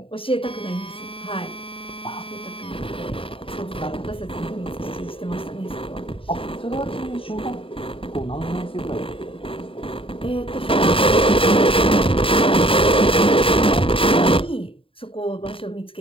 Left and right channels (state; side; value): late; right; 0.26 ms